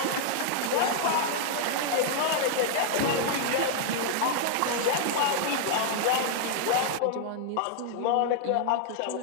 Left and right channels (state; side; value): different; both; correlation -0.01